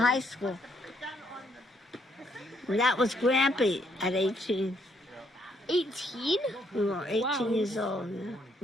school. And that was Grampy at 18. 18? We were 18 Wow. years old. Yeah.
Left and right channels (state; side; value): normal; both; correlation 0.71